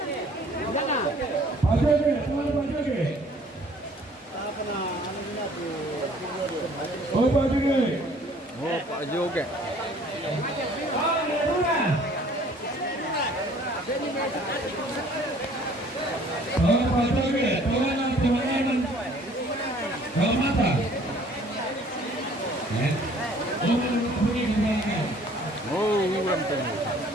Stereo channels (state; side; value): normal; both; correlation 0.55